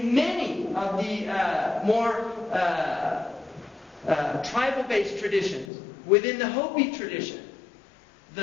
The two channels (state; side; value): drops out; right; at 5.7 s